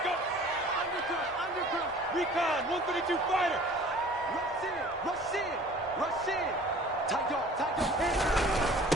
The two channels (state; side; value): normal; both; correlation 0.47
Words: Recon, 132 fighter. Rush in.